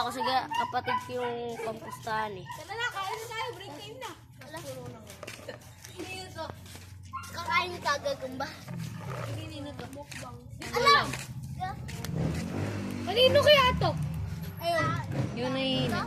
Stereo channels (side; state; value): both; identical; correlation 1.00